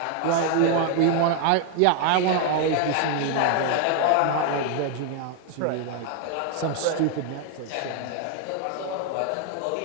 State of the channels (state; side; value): different; both; correlation 0.01